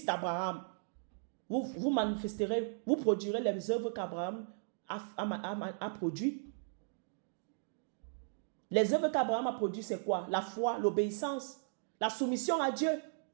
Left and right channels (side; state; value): left; silent; digital silence